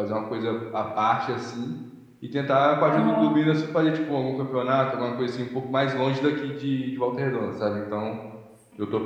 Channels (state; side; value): identical; both; correlation 1.00